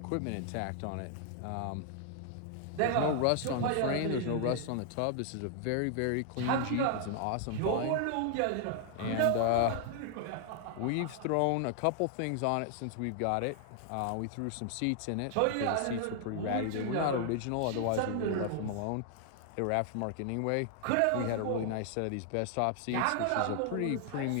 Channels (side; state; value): both; different; correlation 0.00